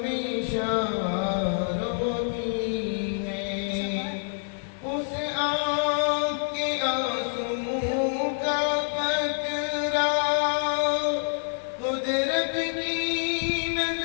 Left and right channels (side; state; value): right; silent; digital silence